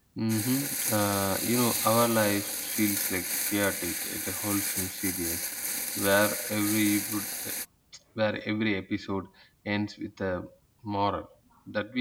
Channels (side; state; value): both; identical; correlation 1.00